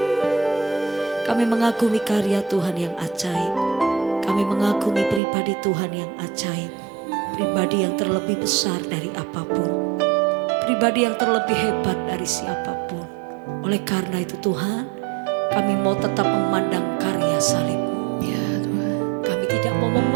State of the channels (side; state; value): left; drops out; at 5.2 s